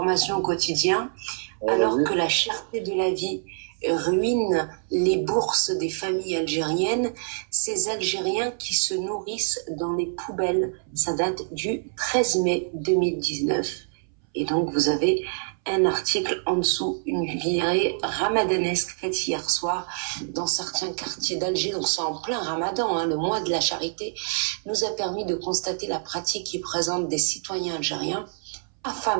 au quotidien, alors que la cherté de la vie ruine les bourses des familles algériennes, ces Algériens qui se nourrissent dans les poubelles. Ça date du 13 mai 2019. Et donc, vous avez un article en dessous, une virée ramadanesque faite hier soir dans certains quartiers d'Alger. Donc, c'est en plein ramadan, hein, le mois de la charité, nous a permis de constater la pratique qui présente des citoyens algériens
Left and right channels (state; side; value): silent; left; 61 dB below the other